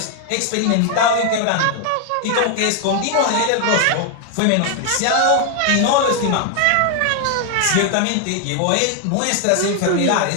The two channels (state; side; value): different; both; correlation 0.00